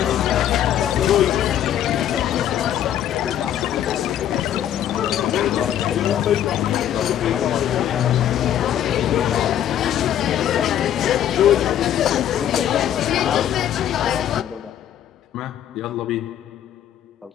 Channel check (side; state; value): right; quieter; 10.8 dB